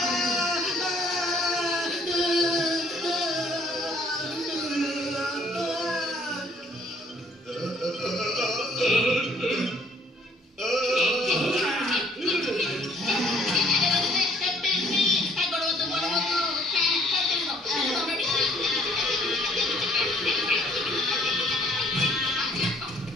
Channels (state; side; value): normal; both; correlation 0.61